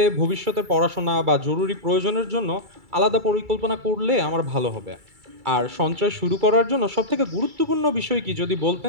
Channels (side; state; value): left; late; 2.3 ms